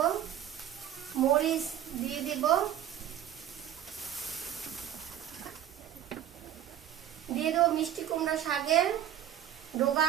মরিচ দিয়ে দিব, দিয়ে দেবো মিষ্টি কুমড়া শাকের ডোগা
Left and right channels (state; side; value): quieter; left; 10.9 dB